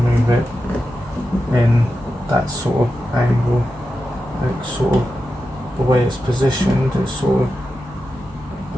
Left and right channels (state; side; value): normal; both; correlation 0.90